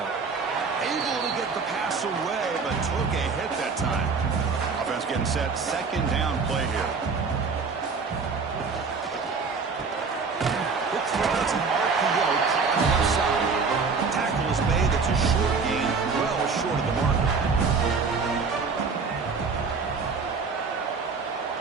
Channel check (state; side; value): quieter; left; 4.9 dB